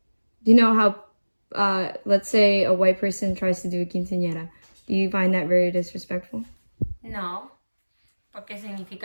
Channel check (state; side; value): inverted; both; correlation -1.00